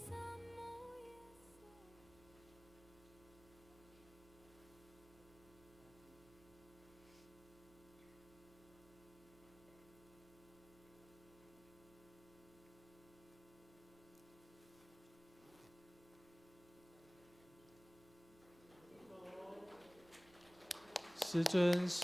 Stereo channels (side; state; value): right; noise; hum, 22 dB below the sound